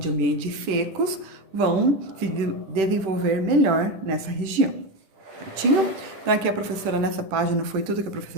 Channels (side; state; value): left; late; 10 ms